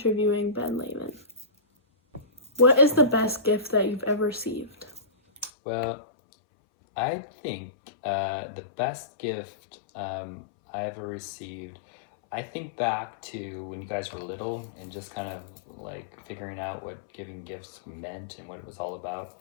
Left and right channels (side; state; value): right; drops out; at 5.5 s